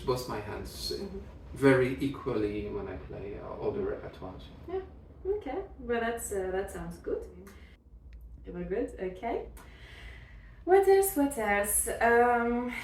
my hands very equally when I play all the repertoires. Yeah. Okay. Well, that sounds good. Very good. Okay. What else?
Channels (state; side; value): identical; both; correlation 1.00